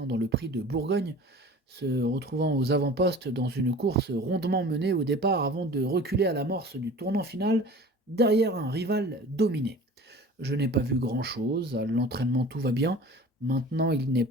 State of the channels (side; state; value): both; normal; correlation 0.41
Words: dans le prix de Bourgogne, se retrouvant aux avant-postes dans une course rondement menée au départ avant de reculer à l'amorce du tournant final derrière un rival dominé. Je n'ai pas vu grand-chose, à l'entraînement tout va bien, maintenant il n'est